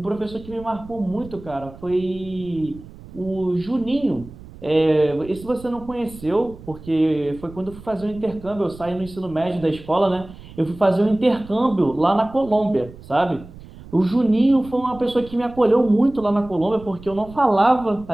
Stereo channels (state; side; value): noise; right; rumble, 18 dB below the sound